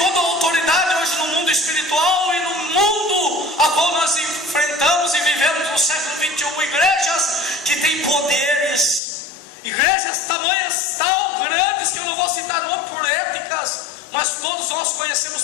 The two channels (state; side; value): drops out; right; at 9.0 s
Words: a autoridade hoje no mundo espiritual e no mundo a qual nós enfrentamos e vivemos no século XXI, igrejas que têm poderes, igrejas tamanhas tão grandes que eu não vou citar nome por éticas, mas todos nós conhecemos